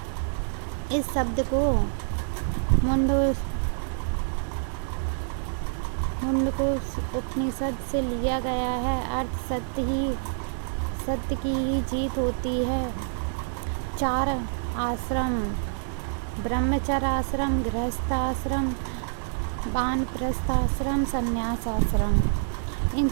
इस शब्द को मुंडको उपनिषद से लिया गया है। अर्थ सत्य की ही जीत होती है। 4 आश्रम, ब्रह्मचर्य आश्रम, गृहस्थ आश्रम, वानप्रस्थ आश्रम, संन्यास आश्रम। इन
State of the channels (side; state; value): left; silent; 60 dB below the other